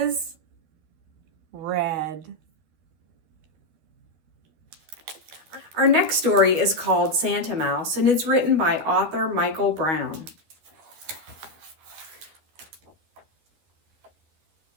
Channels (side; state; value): left; late; 12 ms